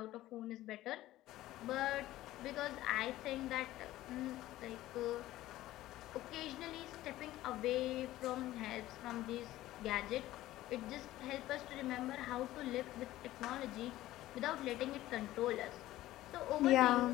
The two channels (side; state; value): right; quieter; 15.5 dB